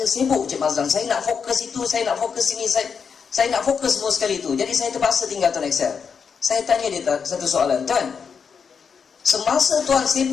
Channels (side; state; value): right; quieter; 6.3 dB